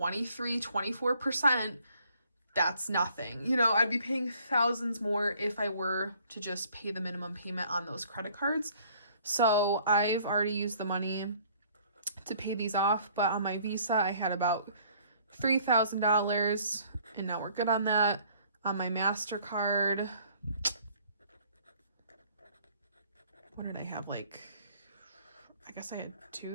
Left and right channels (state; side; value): inverted; both; correlation -0.59